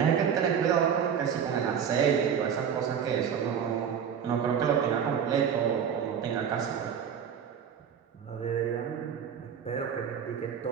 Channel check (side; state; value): left; quieter; 7.9 dB